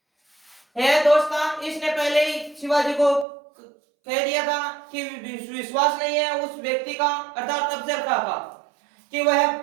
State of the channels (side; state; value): left; drops out; at 3.2 s